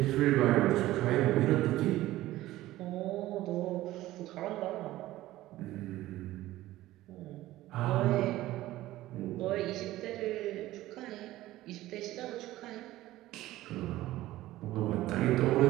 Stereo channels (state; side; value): quieter; left; 16.0 dB